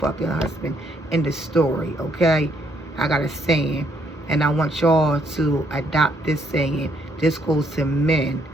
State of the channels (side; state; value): both; normal; correlation 0.71